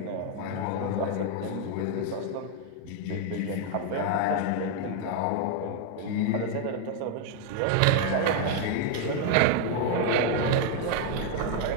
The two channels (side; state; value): both; different; correlation 0.00